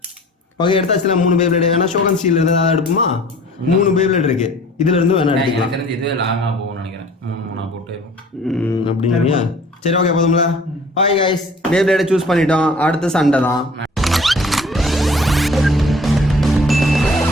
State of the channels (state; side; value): normal; both; correlation 0.49